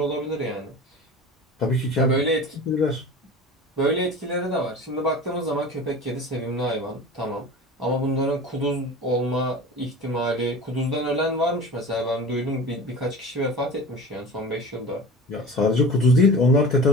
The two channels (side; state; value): both; normal; correlation 0.35